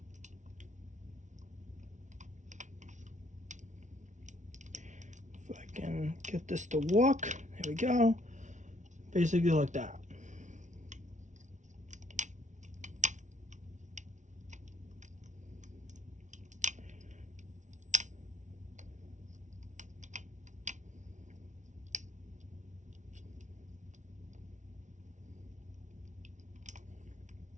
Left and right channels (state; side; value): late; left; 0.36 ms